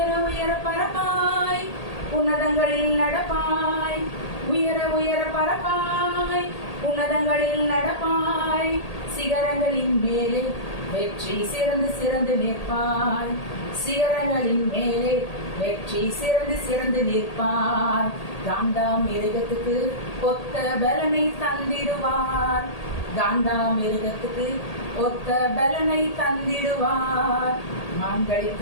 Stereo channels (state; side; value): late; right; 1.8 ms